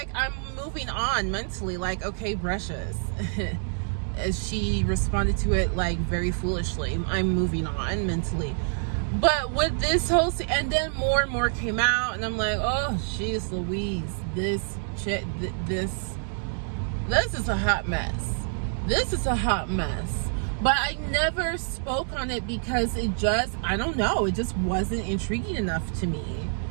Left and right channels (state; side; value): silent; left; digital silence